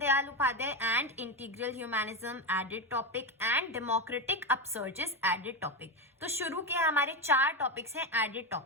Upadhyay and integral humanism, added topic, and democratic upsurges, added topic. तो शुरू के हमारे 4 टॉपिक्स हैं एडेड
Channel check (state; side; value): normal; both; correlation 0.14